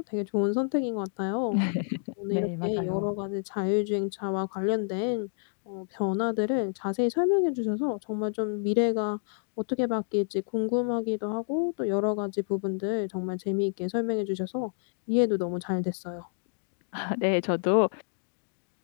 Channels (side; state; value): right; silent; digital silence